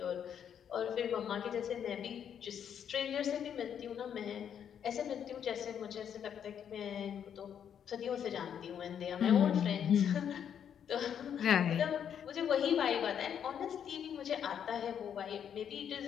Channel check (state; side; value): quieter; right; 8.6 dB